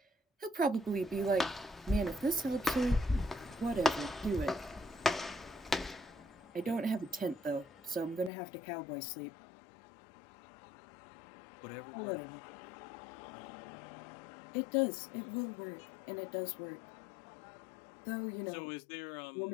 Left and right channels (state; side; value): drops out; right; at 8.3 s